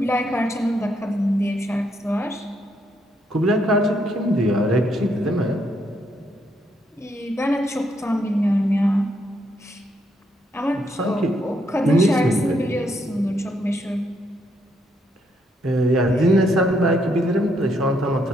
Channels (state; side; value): normal; both; correlation 0.75